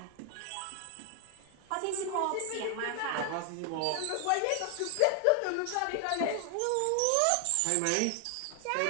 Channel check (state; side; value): different; both; correlation 0.00